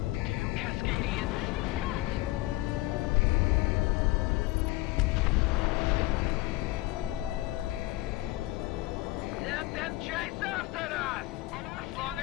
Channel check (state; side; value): quieter; right; 19.0 dB